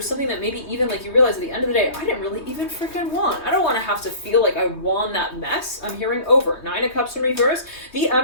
something that maybe even like you realize at the end of the day, I didn't really even freaking want. I don't want to have to feel like I won that mess. I'm hearing over. 9 of Cups in reverse. The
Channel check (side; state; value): right; late; 3.2 ms